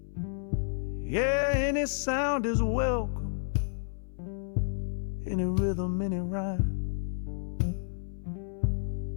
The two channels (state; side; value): silent; right; 57 dB below the other